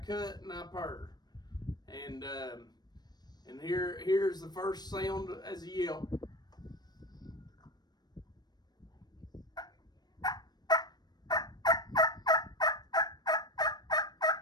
and I purr. And here's the first sound as a yelp.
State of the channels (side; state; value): right; late; 0.19 ms